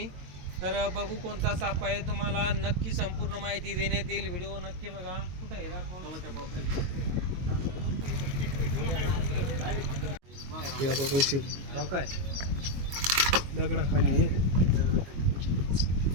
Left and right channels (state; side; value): late; left; 22 ms